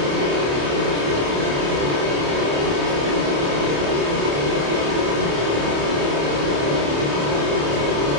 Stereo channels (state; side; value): late; left; 28 ms